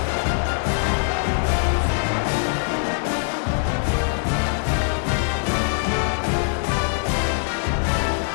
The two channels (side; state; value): right; silent; 64 dB below the other